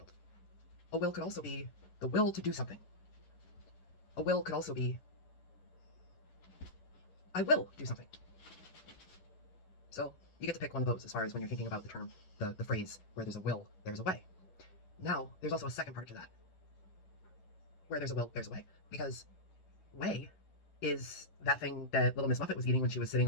A will could also be the will to do something. A will could also be, I will do something. So you get to pick one of those as far as when you're thinking about the term, the phrase, where there's a will, there's a way. Now, there's also a second part to that. Where there's a will, there's a way. Because way is that thing that little Miss Muffet was eating when she was sitting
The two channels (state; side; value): late; right; 11 ms